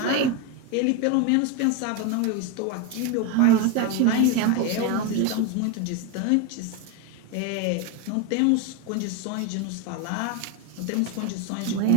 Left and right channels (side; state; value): both; different; correlation 0.02